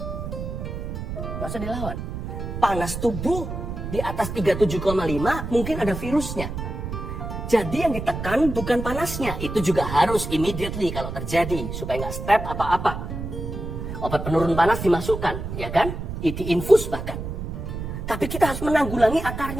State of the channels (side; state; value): right; noise; rumble, 6 dB below the sound